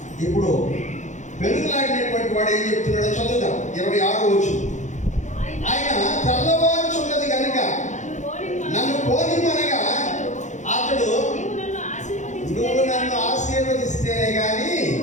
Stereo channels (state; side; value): late; right; 0.35 ms